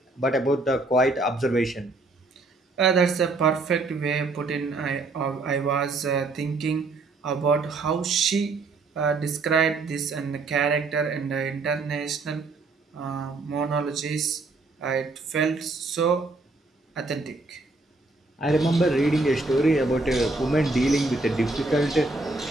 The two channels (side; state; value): left; quieter; 3.4 dB